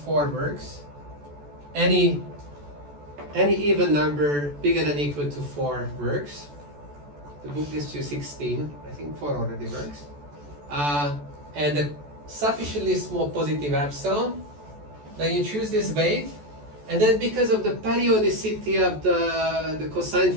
works. Any even number bigger than or equal to 4 works. The book gives you 16. I think 4 already works. And a sufficiently small positive epsilon. Then you choose this weight, and then because of the periodicity of the cosine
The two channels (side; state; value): left; late; 14 ms